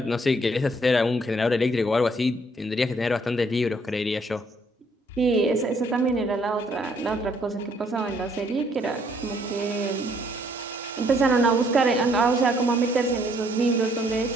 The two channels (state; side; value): normal; both; correlation 0.66